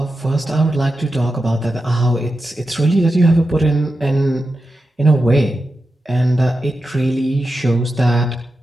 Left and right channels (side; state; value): both; normal; correlation 0.90